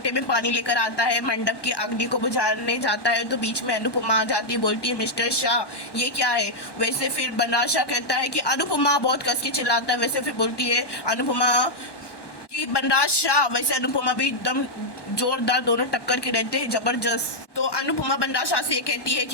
में पानी लेकर आता है, मंडप की अग्नि को बुझाने जाता है, तो बीच में अनुपमा आ जाती है, बोलती है मिस्टर शाह ये क्या है। वैसे फिर बनराज शाह कहता है कि अनुपमा, बहुत कस के चिल्लाता है। वैसे फिर बोलती है अनुपमा कि बनराज शाह। वैसे अनुपमा भी एकदम जोरदार, दोनों टक्कर के रहते हैं जबरदस्त। तो अनुपमा बनराज शाह से ये कहती है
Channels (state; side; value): late; right; 1.1 ms